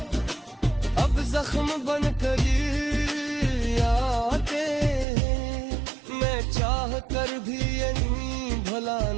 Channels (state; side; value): drops out; left; at 5.1 s